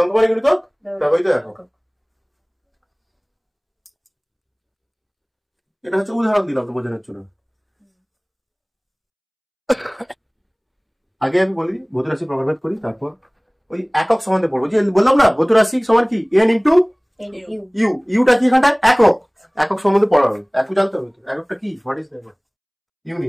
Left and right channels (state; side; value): identical; both; correlation 1.00